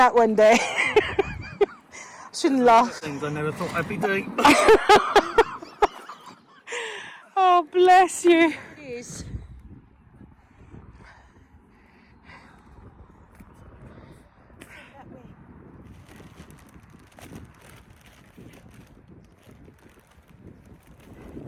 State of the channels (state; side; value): identical; both; correlation 1.00